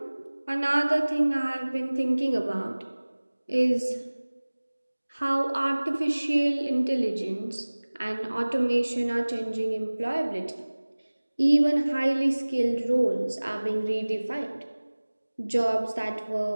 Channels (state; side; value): inverted; both; correlation -1.00